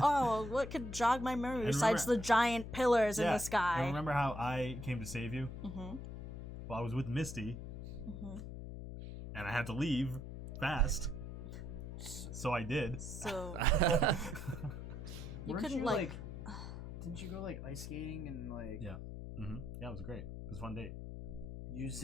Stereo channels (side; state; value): left; noise; hum, 8 dB below the sound